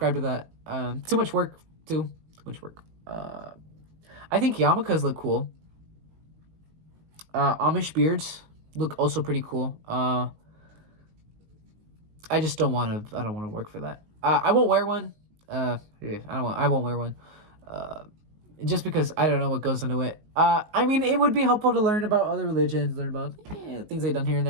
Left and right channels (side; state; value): left; late; 19 ms